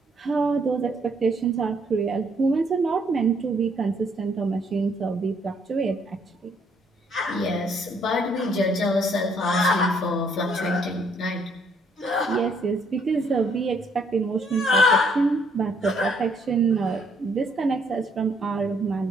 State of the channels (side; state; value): both; normal; correlation 0.68